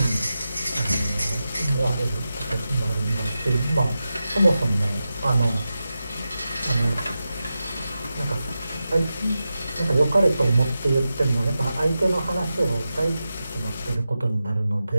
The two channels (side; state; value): both; inverted; correlation -0.91